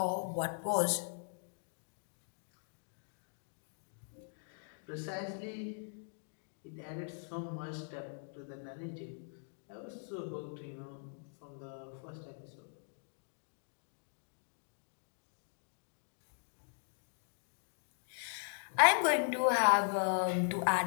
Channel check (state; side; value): silent; right; digital silence